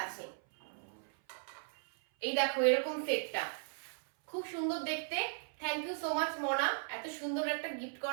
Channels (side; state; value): left; silent; 53 dB below the other